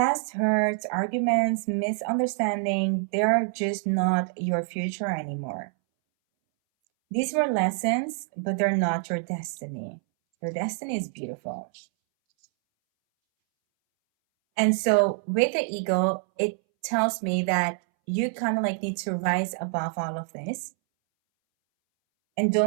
hurts, arguments, misunderstanding, they're just not your future anymore. These were lessons, but they're not your destiny. Your destiny is beautiful. And so with the ego, it tells me that you kind of like need to rise above all of this and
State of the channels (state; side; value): silent; left; 61 dB below the other